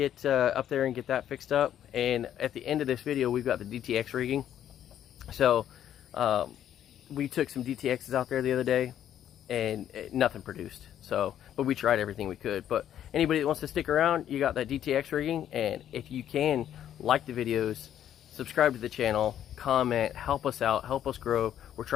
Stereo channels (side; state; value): right; quieter; 10.6 dB